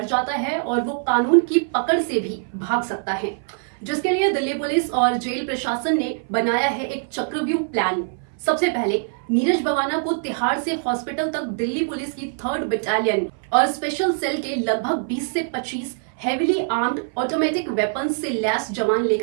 जाता है और वो कानून की पकड़ से भी भाग सकता है, जिसके लिए दिल्ली पुलिस और जेल प्रशासन ने बनाया है एक चक्रव्यूह प्लान। सबसे पहले नीरज बवाना को तिहाड़ से हॉस्पिटल तक दिल्ली पुलिस की 3rd बटालियन और स्पेशल सेल के लगभग 20 से 25 हेवीली आर्म्ड ऑटोमेटिक वेपन्स से लैस जवान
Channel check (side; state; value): left; silent; 57 dB below the other